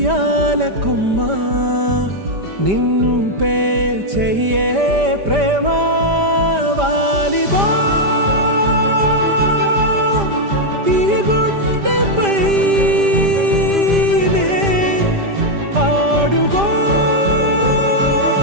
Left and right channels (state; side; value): late; left; 5.0 ms